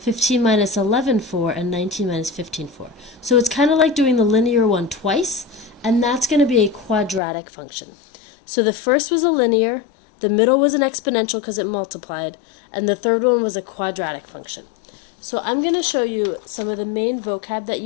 minus 11, 4, and 19 minus 15, 4. So it's kind of like doing the linear one twice, and that's going to be a quadratic function. So the first was a linear, the middle was an exponential because it multiplied, and the third one was a quadratic function. So I'm going to show you some of the main vocab that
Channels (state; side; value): drops out; right; at 7.2 s